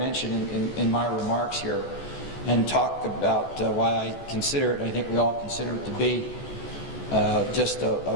in my remarks here, and talk about why I consider it, I think we all consider it to be just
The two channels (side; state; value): right; late; 14 ms